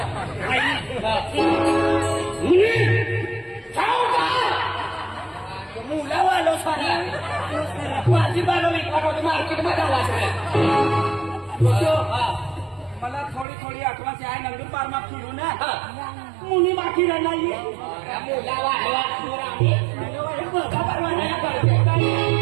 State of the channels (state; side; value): drops out; left; at 13.5 s